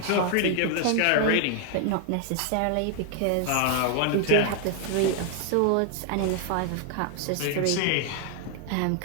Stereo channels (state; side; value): different; both; correlation 0.00